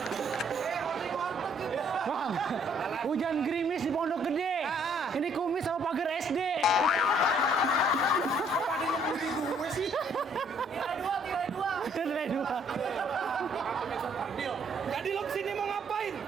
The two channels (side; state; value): both; normal; correlation 0.64